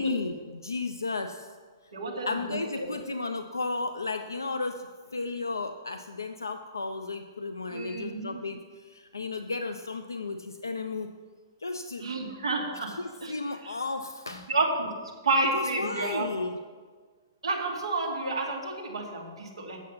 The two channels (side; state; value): both; inverted; correlation -0.58